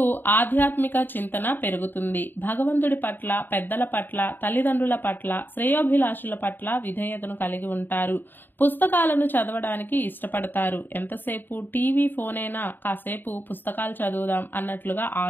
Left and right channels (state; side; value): late; right; 0.093 ms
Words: ఆధ్యాత్మిక చింతన పెరుగుతుంది. భగవంతుడి పట్ల, పెద్దల పట్ల, తల్లిదండ్రుల పట్ల, శ్రేయోభిలాషుల పట్ల విధేయతను కలిగి ఉంటారు. పుస్తకాలను చదవడానికి ఇష్టపడతారు. ఎంతసేపు టీవీ, ఫోన్ అయినా కాసేపు పుస్తకాలు చదువుదాం అన్నట్లుగా